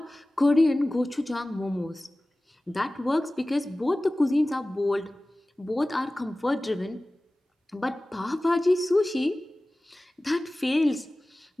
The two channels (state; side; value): normal; both; correlation 0.97